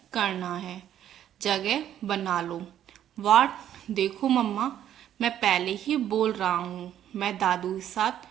करना है। जगह बना लो। वाट, देखो मम्मा, मैं पहले ही बोल रहा हूँ, मैं दादू के साथ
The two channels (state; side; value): quieter; left; 10.9 dB